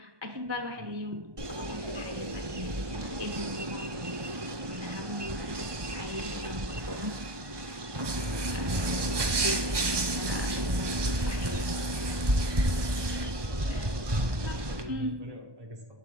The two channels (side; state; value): left; late; 1.2 ms